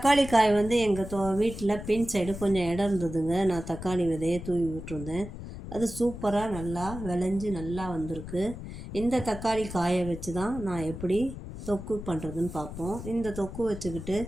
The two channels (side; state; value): left; noise; rumble, 10 dB below the sound